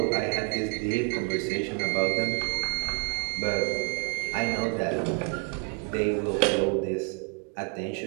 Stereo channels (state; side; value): quieter; left; 35.9 dB